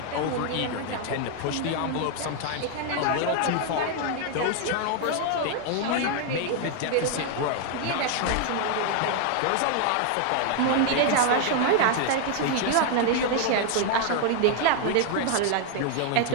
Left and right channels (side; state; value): both; different; correlation 0.00